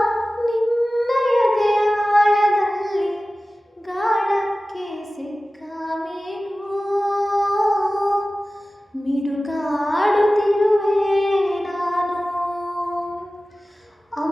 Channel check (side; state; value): both; normal; correlation 0.96